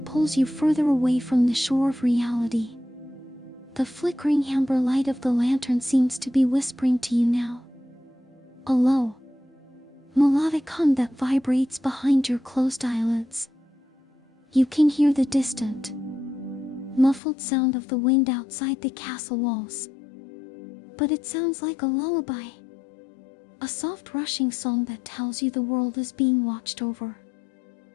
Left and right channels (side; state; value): right; drops out; at 17.2 s